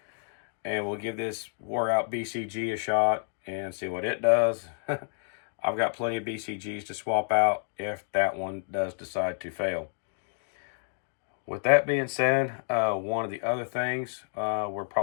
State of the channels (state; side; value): silent; right; digital silence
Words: And we'll give this wore out BCG a shot and see what it does. I've got plenty of BCGs to swap out if that one does decide to fail. With that being said, one of the other things we're